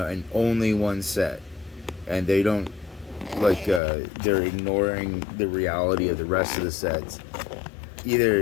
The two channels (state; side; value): drops out; right; at 3.8 s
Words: only one set, and they don't, like, they're ignoring the reality of the rest of the sets